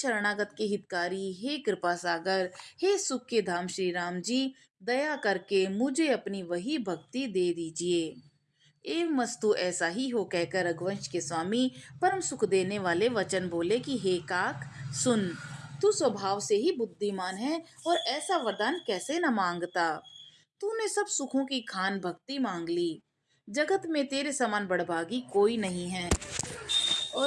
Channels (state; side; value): identical; both; correlation 1.00